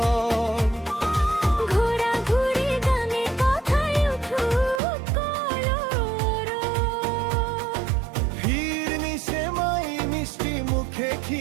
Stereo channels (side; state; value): left; drops out; at 4.8 s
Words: ঘোরাঘুরি গানে কথায় উঠুক কলরব। ভিড় নিশে মাই মিষ্টি মুখে